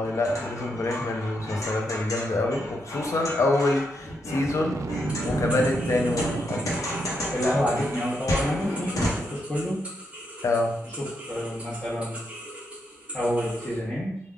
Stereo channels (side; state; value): both; normal; correlation 0.80